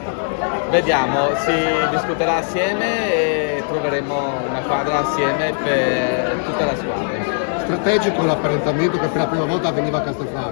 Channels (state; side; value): silent; right; digital silence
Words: Vediamo, si discuterà assieme e troveremo una quadra assieme per tutta la squadra. Strategico l'apparentamento che per la prima volta avveniva a